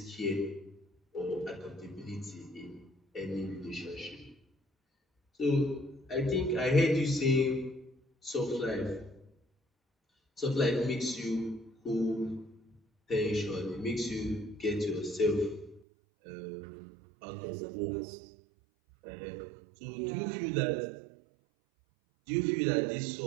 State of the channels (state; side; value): drops out; left; at 15.8 s